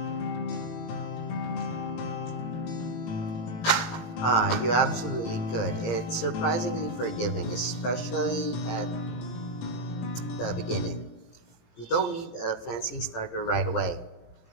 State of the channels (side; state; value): right; late; 18 ms